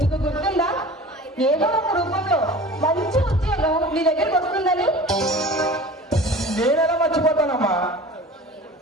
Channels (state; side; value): normal; both; correlation 0.40